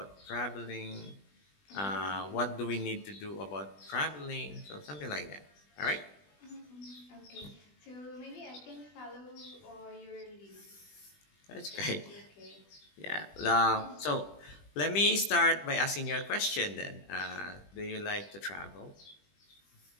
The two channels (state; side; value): late; right; 20 ms